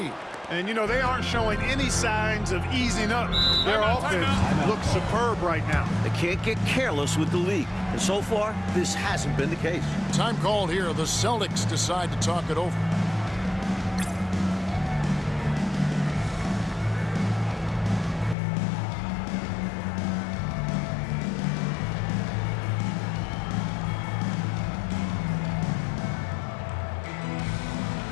And, you know, they aren't showing any signs of easing up. Their offense looks superb right now. They can't get careless with the league. And so far, this hasn't been the case. Time called here. The Celtics decide to talk it over.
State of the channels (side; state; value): right; drops out; at 18.4 s